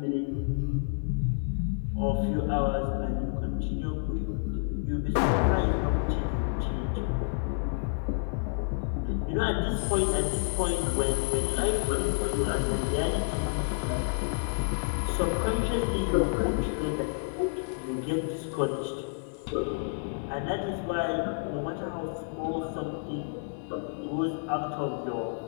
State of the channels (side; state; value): right; silent; 56 dB below the other